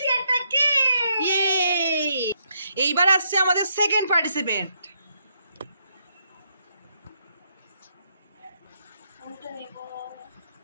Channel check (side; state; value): both; inverted; correlation -0.75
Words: একটা কেক। ইয়ে! এইবার আসছে আমাদের সেকেন্ড পার্টিসিপেন্ট। কোনটা নেব?